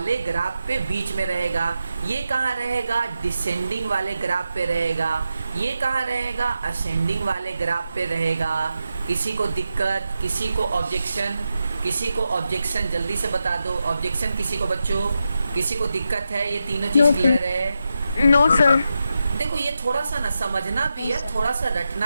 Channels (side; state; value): both; inverted; correlation -0.88